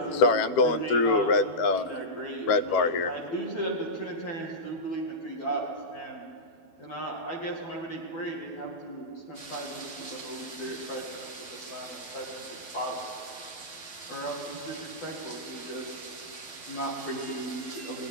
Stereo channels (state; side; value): late; right; 12 ms